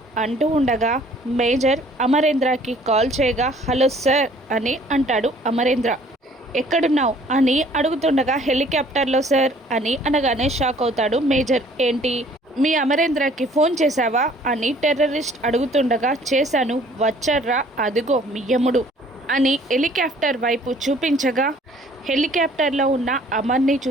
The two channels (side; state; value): both; normal; correlation 0.56